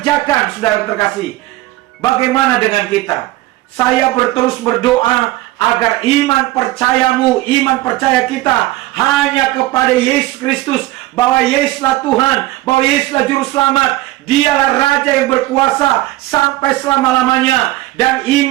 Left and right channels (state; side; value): quieter; left; 17.4 dB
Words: saudara terkasih. Bagaimana dengan kita? Saya terus berdoa agar iman percayamu, iman percaya kita hanya kepada Yesus Kristus, bahwa Yesuslah Tuhan, bahwa Yesuslah Juru Selamat. Dialah Raja yang berkuasa sampai selama-lamanya. Dan